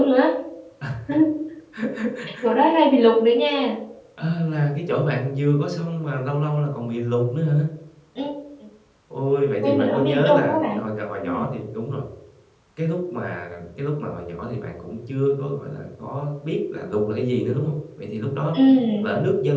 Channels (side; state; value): both; identical; correlation 1.00